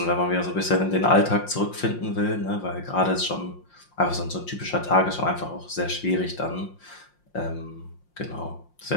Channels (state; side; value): late; right; 5.7 ms